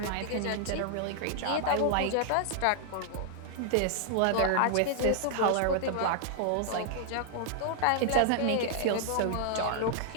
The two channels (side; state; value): both; different; correlation 0.00